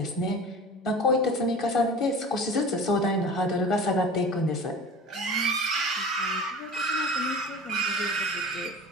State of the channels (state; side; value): normal; both; correlation 0.38